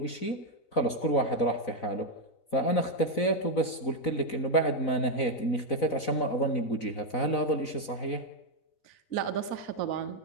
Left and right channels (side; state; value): right; late; 4.0 ms